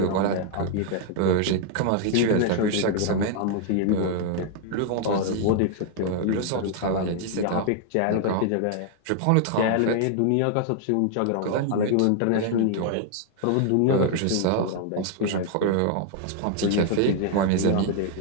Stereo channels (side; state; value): both; different; correlation 0.00